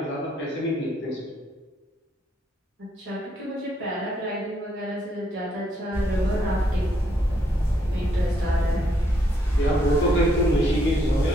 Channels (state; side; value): normal; both; correlation 0.73